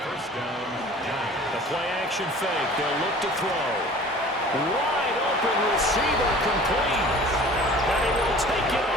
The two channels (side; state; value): both; normal; correlation 0.45